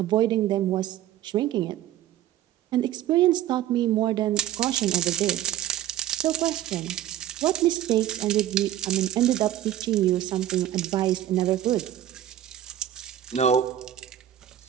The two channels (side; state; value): left; quieter; 12.2 dB